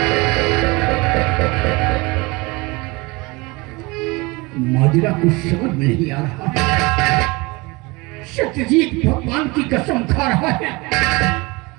माजरा कुछ समझ में नहीं आ रहा। सत्यजीत भगवान की कसम खा रहा है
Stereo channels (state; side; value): quieter; left; 24.8 dB